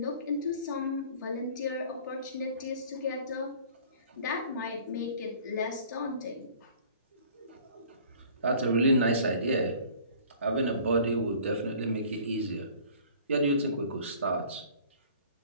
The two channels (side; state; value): both; inverted; correlation -0.50